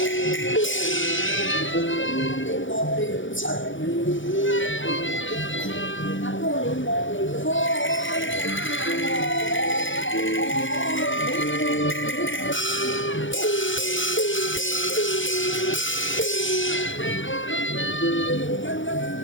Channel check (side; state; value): right; late; 0.56 ms